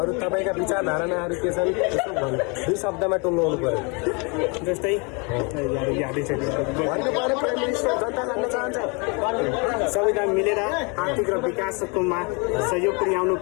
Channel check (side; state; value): right; quieter; 31.9 dB